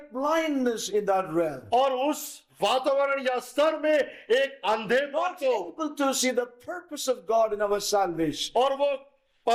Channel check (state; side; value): identical; both; correlation 1.00